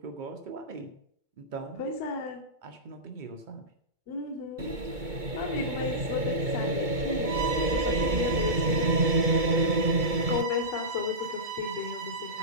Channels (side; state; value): left; late; 2.2 ms